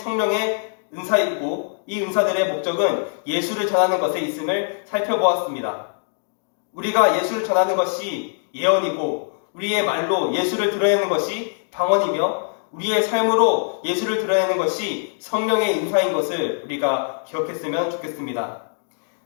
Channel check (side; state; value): right; silent; digital silence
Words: 은사이고 이 은사들의 목적은 예수를 전하는 것에 있음을 살펴보았습니다. 우리가 예수를 전하는 것이 예언이고 우리의 말로 예수를 드러내는 것이 방언이며 우리의 삶으로 예수를 드러내는 것이 성령의 인사인 것을 우리가 기억했으면 좋겠습니다.